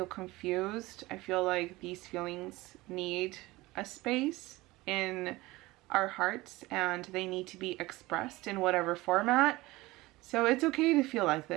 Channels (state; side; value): quieter; left; 20.0 dB